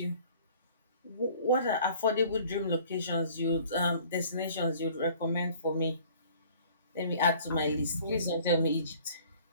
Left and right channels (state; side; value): inverted; both; correlation -0.52